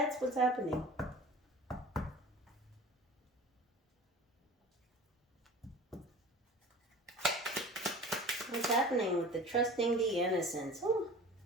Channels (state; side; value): normal; both; correlation 0.40